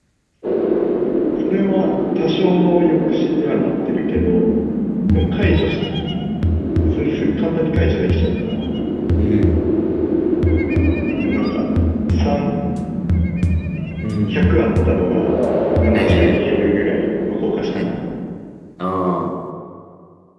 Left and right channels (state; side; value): identical; both; correlation 1.00